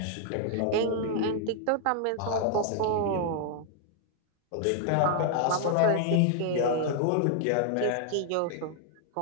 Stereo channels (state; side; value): different; both; correlation 0.00